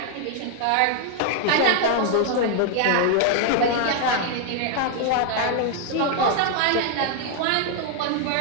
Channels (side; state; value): both; different; correlation 0.00